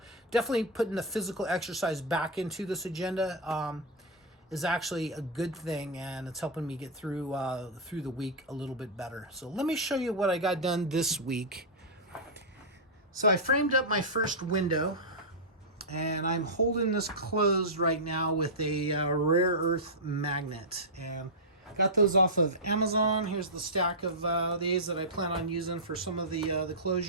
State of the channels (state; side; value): normal; both; correlation -0.08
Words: definitely putting the physical exercise back into this agenda is actually a good thing, and it's helping me get through the week a little bit better. So let me show you what I got done this week. So I framed up my first window, and I'm holding this closed right now with a rare earth magnet, and got those off of Amazon. Here's the stack of these that I plan on using for some of the